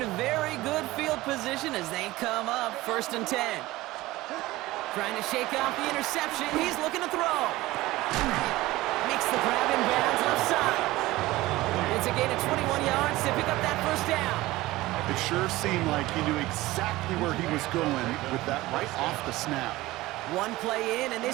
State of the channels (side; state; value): left; quieter; 18.4 dB